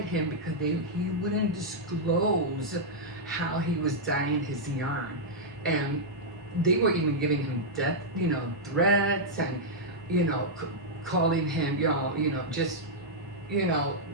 him because he wouldn't disclose how he was dyeing his yarn, and they were even giving him death, threats, and calling him, just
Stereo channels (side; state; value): both; normal; correlation -0.07